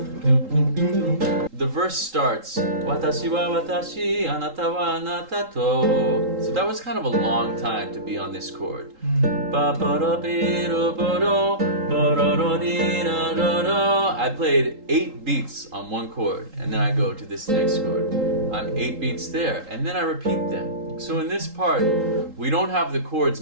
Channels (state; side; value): late; left; 3.8 ms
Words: The verse starts, 私は私、あなたはあなたと。So that was kind of a long time to be on this chord. I played 8 beats on one chord, and then I go to this next chord. I'm 8 beats there, and then I repeat them. So in this part, we don't have the chords